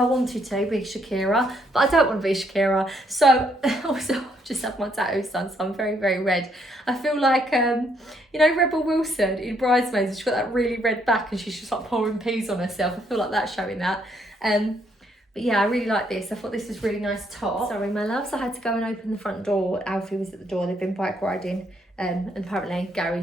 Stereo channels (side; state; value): both; normal; correlation 0.71